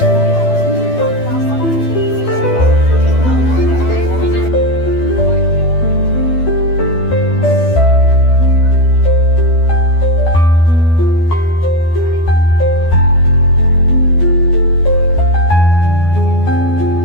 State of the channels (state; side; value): late; right; 12 ms